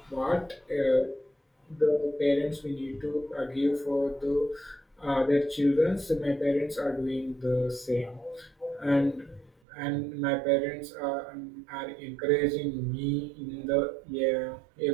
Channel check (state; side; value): drops out; left; at 9.5 s